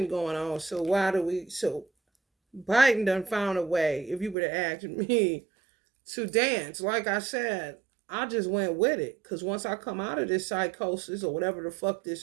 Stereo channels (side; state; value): left; drops out; at 4.4 s